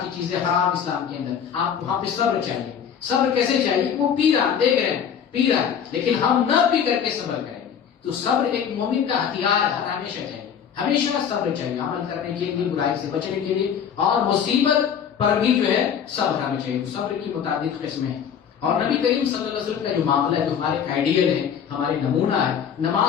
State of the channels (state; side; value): quieter; right; 8.0 dB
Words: کی چیزیں حرام اسلام کے اندر. آپ وہاں پہ صبر چاہیے. صبر کیسے چاہیے؟ وہ پی رہا، دیکھ رہے ہیں پی رہا ہے، لیکن ہم نہ پی کر کے صبر کریں گے. تو صبر ایک مومن کا ہتھیار ہمیشہ چاہیے، ہمیشہ صبر چاہیے عمل کرنے کے لیے، برائی سے بچنے کے لیے، اور مصیبت پر بھی جو ہے صبر ہمیں چاہیے. تو صبر کی متعدد قسمیں ہیں، اور نبی کریم صلی اللہ علیہ وسلم کا جو معاملہ ہے، جو ہمارے آئیڈیل ہے، ہمارے نمونہ ہے.